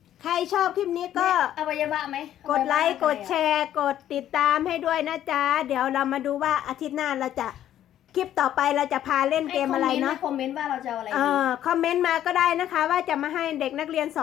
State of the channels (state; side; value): quieter; right; 11.6 dB